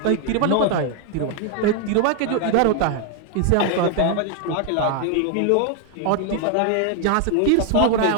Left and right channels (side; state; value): both; different; correlation 0.00